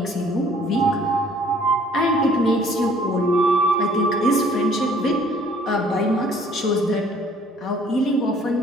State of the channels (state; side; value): normal; both; correlation 0.57